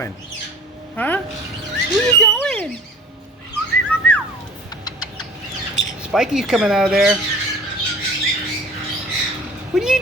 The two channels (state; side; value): normal; both; correlation 0.44